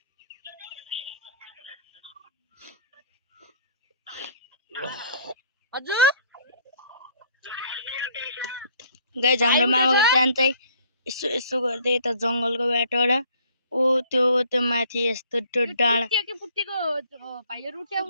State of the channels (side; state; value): both; inverted; correlation -0.58